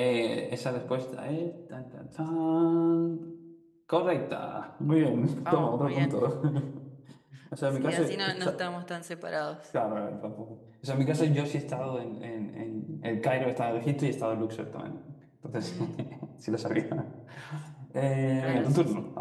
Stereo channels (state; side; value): identical; both; correlation 1.00